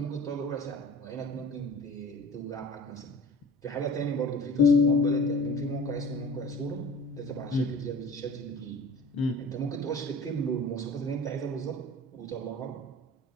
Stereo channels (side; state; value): both; normal; correlation 0.41